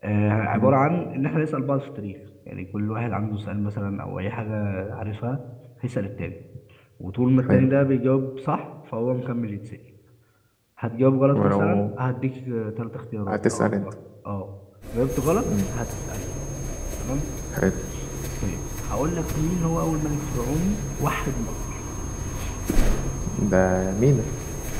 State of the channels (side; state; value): both; identical; correlation 1.00